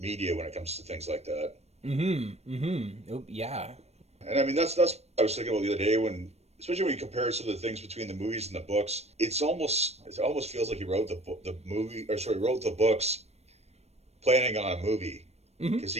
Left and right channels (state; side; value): late; left; 0.31 ms